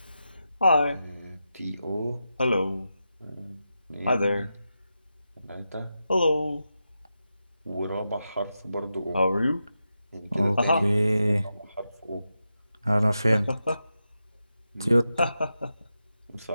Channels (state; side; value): inverted; both; correlation -0.89